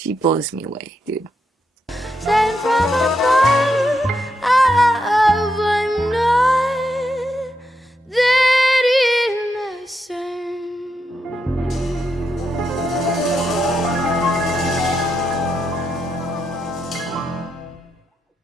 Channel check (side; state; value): both; normal; correlation 0.83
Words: blows me away, dude.